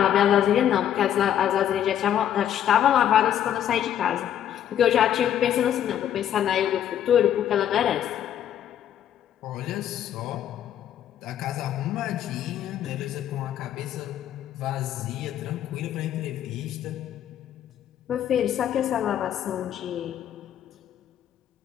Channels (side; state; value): right; quieter; 10.4 dB